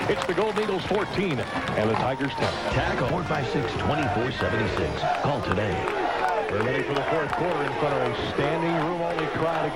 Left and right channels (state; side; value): identical; both; correlation 1.00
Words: It's the Golden Eagles 14 and the Tigers 10. Tackle 456-2476. Call today. We're ready for the fourth quarter in front of a standing room only crowd